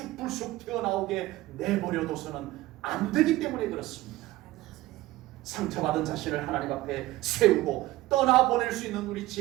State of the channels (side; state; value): left; quieter; 17.6 dB